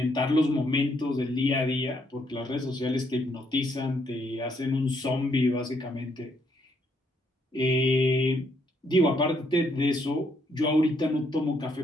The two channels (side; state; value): both; normal; correlation 0.72